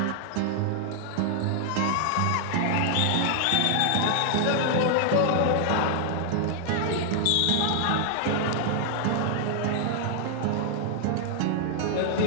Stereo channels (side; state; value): both; different; correlation 0.00